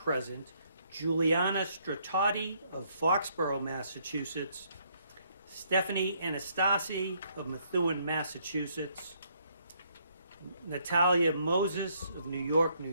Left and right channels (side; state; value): both; inverted; correlation -0.70